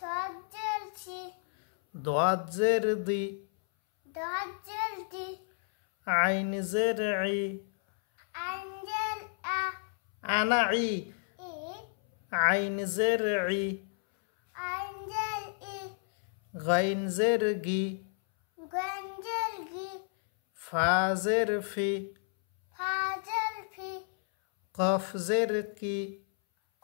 ضاد زر ضي ضاد زر دي عين زر عي أنزل أنا عي إيه عين زر عي أنزل إيه غين زر جي غنزل جي فا زر في فازل في قاف زر كي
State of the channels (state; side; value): silent; right; 57 dB below the other